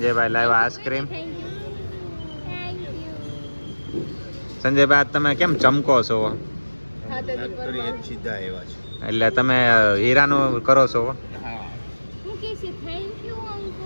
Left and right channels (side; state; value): both; inverted; correlation -1.00